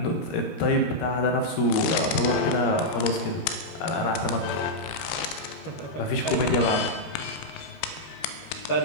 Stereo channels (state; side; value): late; right; 13 ms